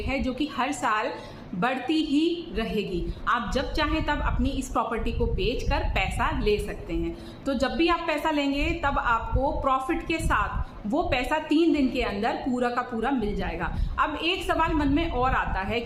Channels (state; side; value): identical; both; correlation 1.00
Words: है जो कि हर साल बढ़ती ही रहेगी। आप जब चाहें तब अपनी इस प्रॉपर्टी को बेचकर पैसा ले सकते हैं। तो जब भी आप पैसा लेंगे तब आपको प्रॉफिट के साथ वो पैसा 3 दिन के अंदर पूरा का पूरा मिल जाएगा। अब एक सवाल मन में और आता है